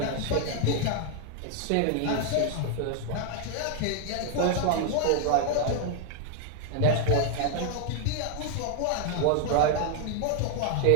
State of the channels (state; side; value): different; both; correlation 0.00